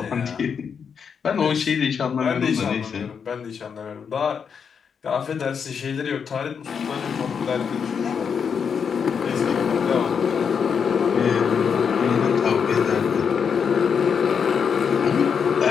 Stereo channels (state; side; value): quieter; right; 6.6 dB